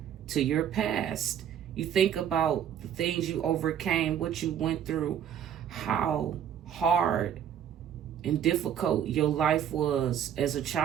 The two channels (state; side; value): quieter; left; 9.3 dB